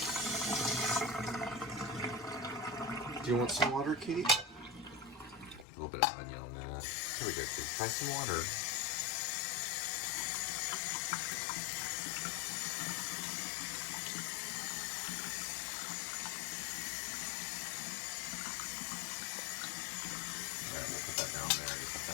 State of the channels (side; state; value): right; drops out; at 5.7 s